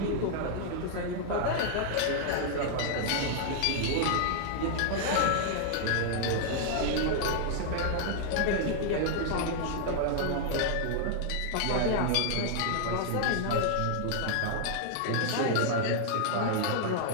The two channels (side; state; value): both; different; correlation -0.01